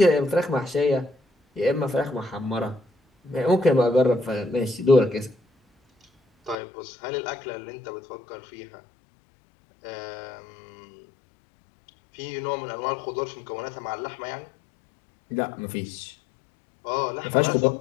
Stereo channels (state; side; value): drops out; right; at 6.6 s